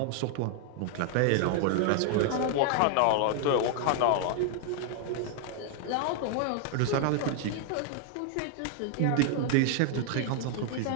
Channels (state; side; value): different; both; correlation 0.00